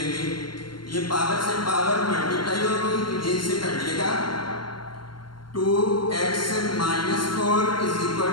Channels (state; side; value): late; right; 0.72 ms